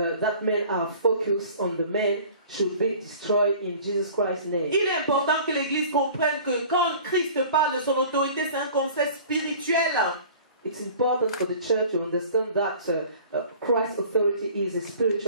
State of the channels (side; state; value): both; inverted; correlation -0.45